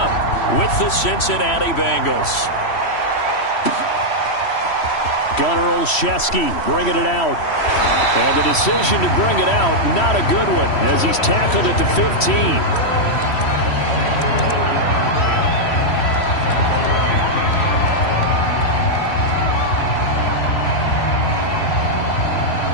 with the Cincinnati Bengals. Gunnar Olszewski bringing it out. And the decision to bring it out, not a good one, as he's tackled at the 15.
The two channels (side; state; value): right; late; 3.1 ms